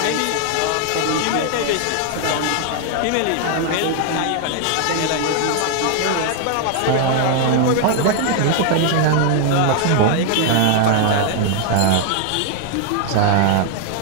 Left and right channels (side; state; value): both; different; correlation 0.00